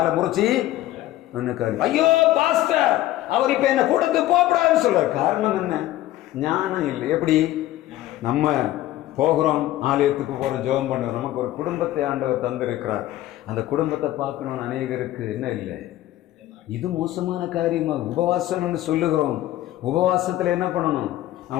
முறிச்சி ஐயோ பாஸ்டர் அவர் இப்ப என்ன கூட்டத்துக்கு போகக்கூடாதுன்னு சொல்றாரு. காரணம் என்ன? ஞானம் இல்லை. எப்படி? நம்ம போகிறோம், ஆலயத்துக்கு போகிறோம், ஜெபம் பண்ணுறோம். நமக்கு ஒரு குடும்பத்தை ஆண்டவர் தந்திருக்கிறார். அந்த குடும்பத்தை பார்க்கணும்னு அநேகருக்கு என்ன இல்லை, இது மோசமான காரியமா? உபவாசம்னு சொல்லுகிறோம். உபவாசத்தில் என்ன பண்ணணும்?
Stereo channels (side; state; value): right; quieter; 14.7 dB